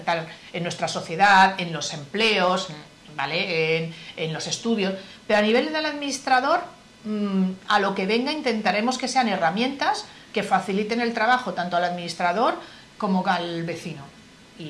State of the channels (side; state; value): both; identical; correlation 1.00